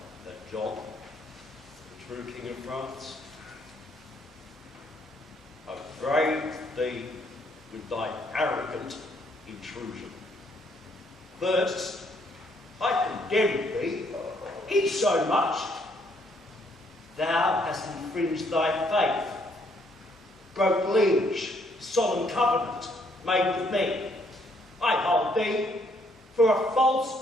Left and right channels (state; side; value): normal; both; correlation 0.69